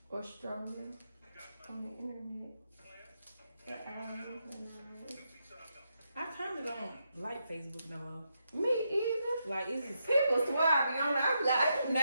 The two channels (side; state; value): both; inverted; correlation -0.82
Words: Or strolling on the internet. For hours and hours. I kinda don't like Facebook no more. Me either. Like, it's People swear I be on there. I'm like, I do